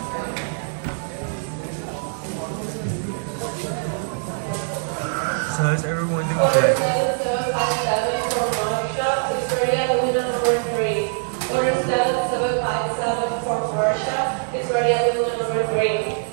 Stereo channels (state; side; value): silent; left; 63 dB below the other